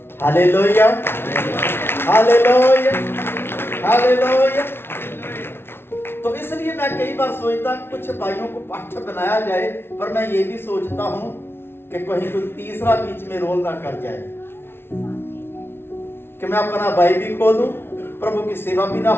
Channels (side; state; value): right; late; 0.11 ms